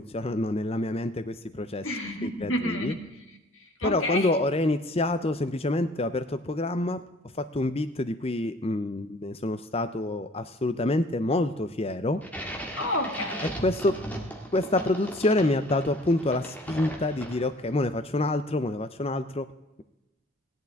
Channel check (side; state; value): both; normal; correlation 0.53